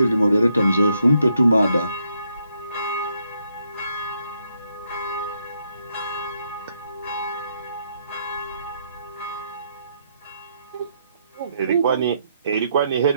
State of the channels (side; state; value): both; inverted; correlation -0.76